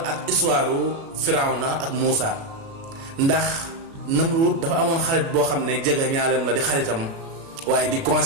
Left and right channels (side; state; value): left; late; 36 ms